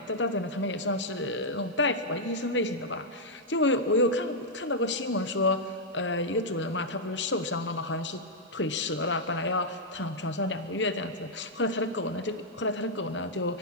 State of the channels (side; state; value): both; normal; correlation -0.05